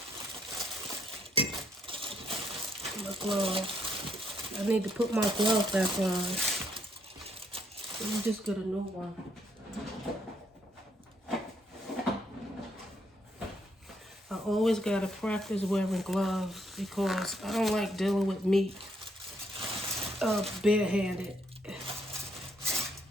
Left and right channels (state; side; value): normal; both; correlation 0.73